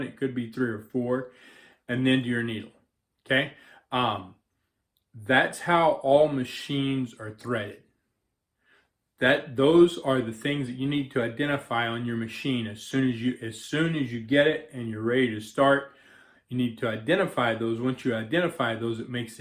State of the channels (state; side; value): identical; both; correlation 1.00